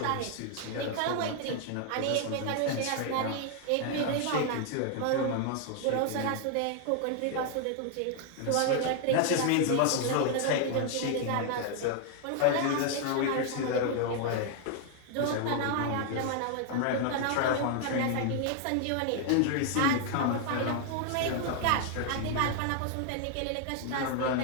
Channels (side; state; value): both; different; correlation 0.00